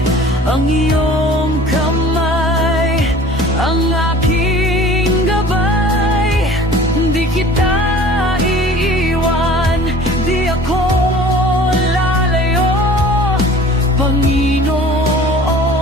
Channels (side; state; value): both; normal; correlation 0.46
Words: ang iyong kamay ang aking gabay. Di kita iiwan, di ako lalayo, Panginoon.